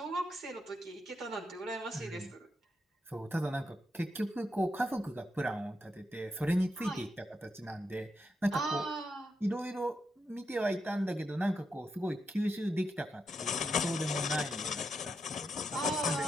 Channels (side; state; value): both; normal; correlation 0.83